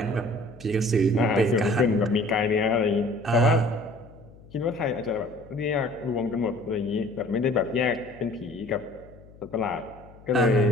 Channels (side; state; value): left; noise; hum, 22 dB below the sound